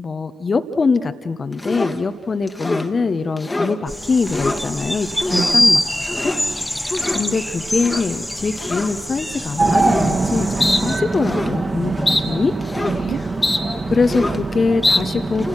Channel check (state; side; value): normal; both; correlation 0.93